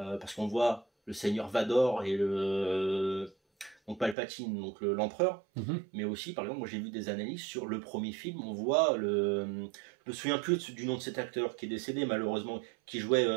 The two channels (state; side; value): drops out; left; at 4.2 s